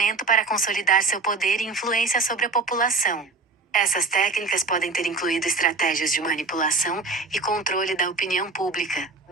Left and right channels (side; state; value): left; quieter; 3.8 dB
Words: para consolidar seu poder e influência sobre a população. Essas técnicas podem ter incluído estratégias de manipulação e controle da opinião pública,